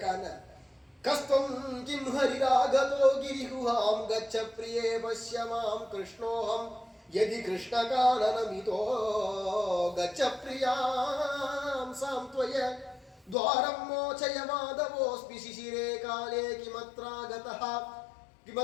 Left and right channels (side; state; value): right; drops out; at 13.4 s